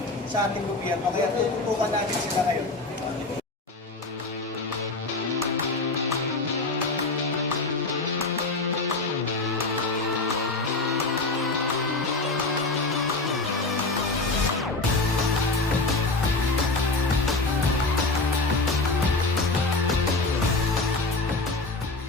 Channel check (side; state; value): right; quieter; 3.3 dB